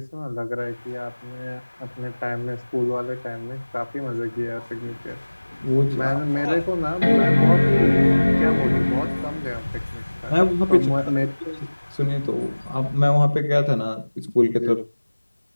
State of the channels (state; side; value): inverted; both; correlation -1.00